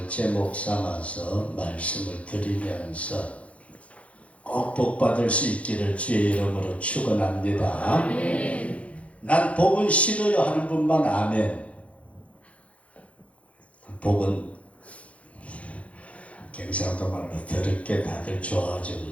제목 삼아서 말씀을 드리면서 꼭 복받을 수 있기를 주의 이름으로 축원합니다. 난 복은 싫어요 하는 분만 아멘. 복은 경상도 말로 더럽게 다들 좋아하죠,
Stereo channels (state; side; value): late; right; 0.064 ms